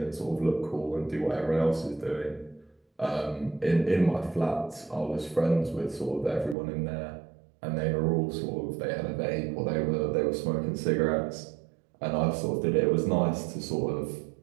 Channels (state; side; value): drops out; left; at 6.6 s